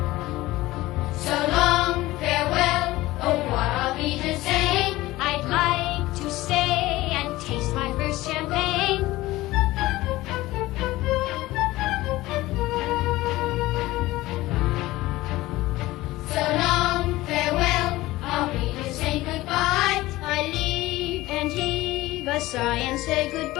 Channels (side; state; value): right; quieter; 18.1 dB